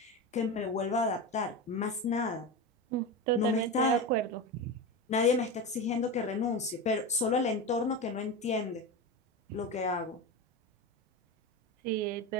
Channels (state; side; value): normal; both; correlation 0.21